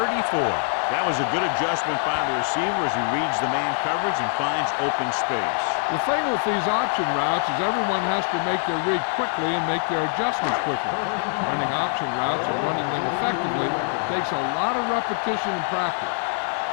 That was a good adjustment by the receiver as he reads the man coverage and finds open space. The thing with these option routes is everyone has to make their read quickly and make their adjustments quickly. Running option routes and running them effectively takes a lot of repetition and practice.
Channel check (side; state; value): right; silent; 63 dB below the other